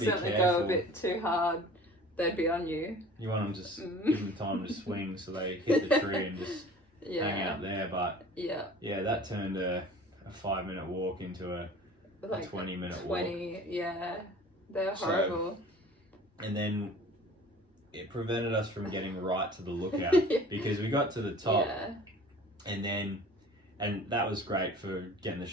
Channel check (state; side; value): normal; both; correlation 0.44